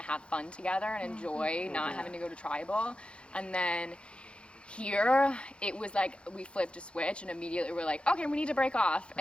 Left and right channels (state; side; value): late; right; 0.057 ms